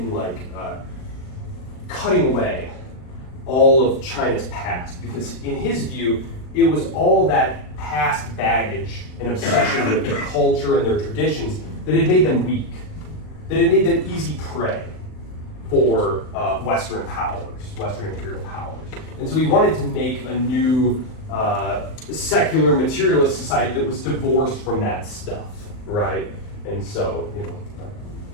cutting away all of China's past, because in his view, it was all that past baggage and obsession with their culture and their traditions that had made them weak, that had made them easy prey for Western powers, Western imperial powers. And so he wanted to make a new secular materialist society that was divorced from that stuff, right? And so,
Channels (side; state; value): right; late; 39 ms